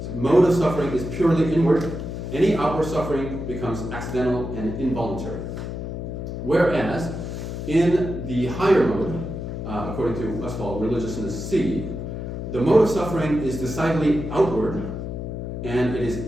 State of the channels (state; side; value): noise; left; hum, 6 dB below the sound